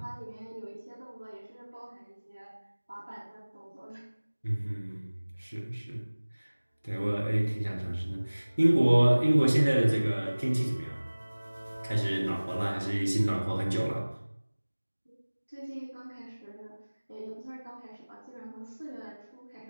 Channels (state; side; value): inverted; both; correlation -1.00